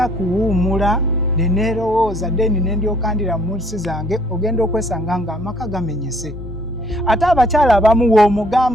kuwuumula neneerowooza deni nendyoka ndira mu nsi zange, ogenda okwesanga nga amaka gamenyese. Ate abakyala abamu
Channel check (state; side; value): normal; both; correlation 0.62